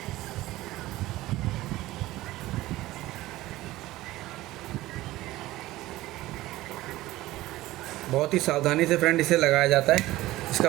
बहुत ही सावधानी से फ्रेंड इसे लगाया जाता है।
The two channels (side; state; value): left; quieter; 17.1 dB